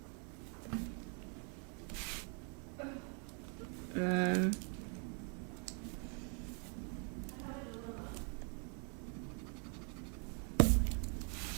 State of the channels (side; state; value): left; quieter; 39.5 dB